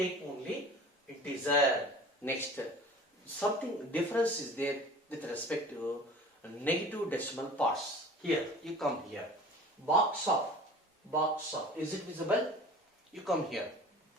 only integer. Next, something difference is there with respect to negative decimal parts. Here, you come here. Box of, is it visible? You come here.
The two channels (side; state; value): both; normal; correlation 0.42